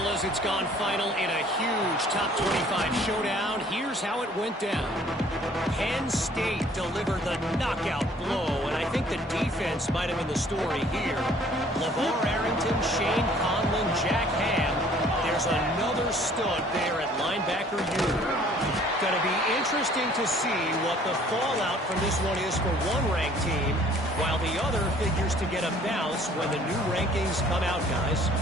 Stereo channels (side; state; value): both; normal; correlation 0.56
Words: it's gone final in a huge top 25 showdown. Here's how it went down. Penn State delivered the knockout blow, and I think the defense might have been the story here. LeVar Arrington, Shane Conlon, Jack Ham. There's another stud there at linebacker unit. Going to be interesting to see what the fallout from this one is for one ranked team, while the other figures to get a bounce when the new rankings come out, guys.